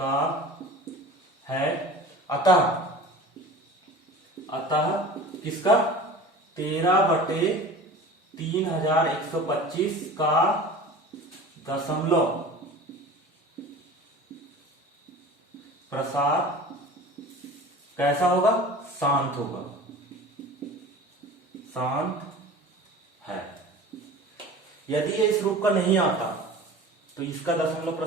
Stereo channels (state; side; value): normal; both; correlation 0.39